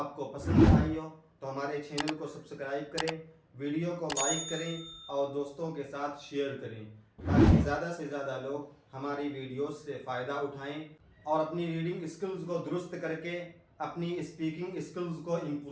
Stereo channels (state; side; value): identical; both; correlation 1.00